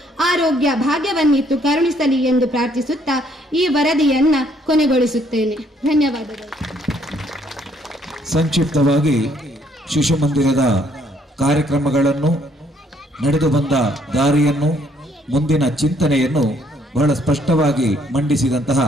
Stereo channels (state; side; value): normal; both; correlation 0.67